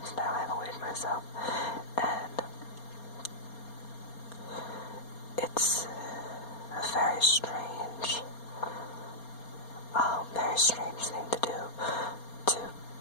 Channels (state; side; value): late; right; 4.3 ms